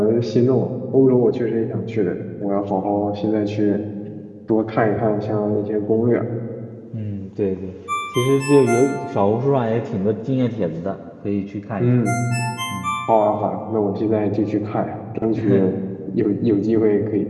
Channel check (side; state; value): both; identical; correlation 1.00